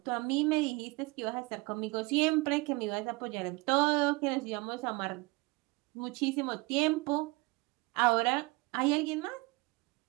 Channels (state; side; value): quieter; left; 24.8 dB